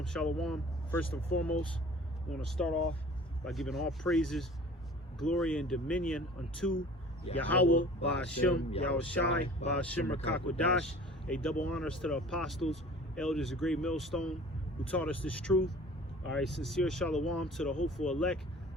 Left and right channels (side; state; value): both; normal; correlation 0.46